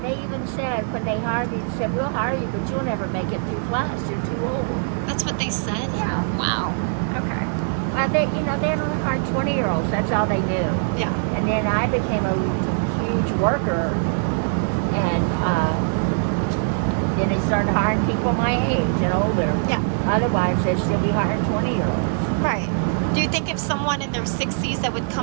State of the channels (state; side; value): silent; left; digital silence